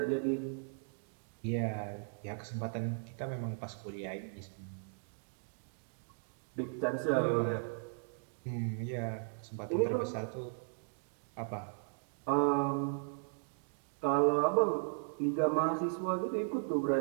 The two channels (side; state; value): left; silent; digital silence